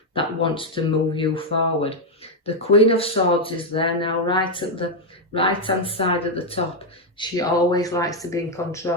that wants to move you forward. The Queen of Swords is there now, right at the right-hand side at the top. She always likes to be in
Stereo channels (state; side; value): normal; both; correlation 0.02